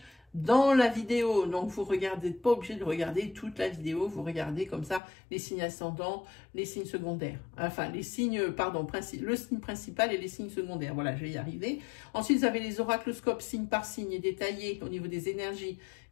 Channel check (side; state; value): right; drops out; at 5.0 s